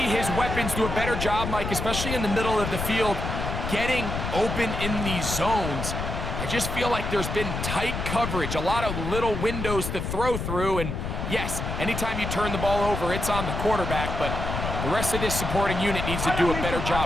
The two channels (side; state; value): left; noise; rumble, 4 dB below the sound